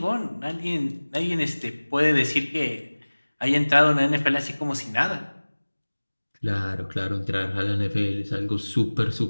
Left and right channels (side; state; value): both; inverted; correlation -1.00